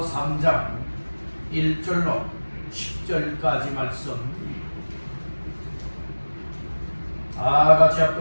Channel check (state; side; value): inverted; both; correlation -1.00